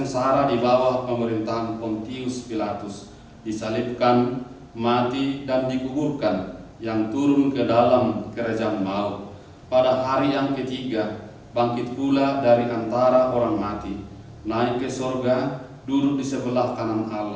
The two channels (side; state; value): both; identical; correlation 1.00